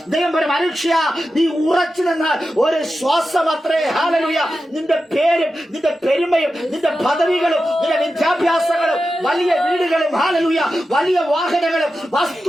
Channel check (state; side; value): normal; both; correlation 0.91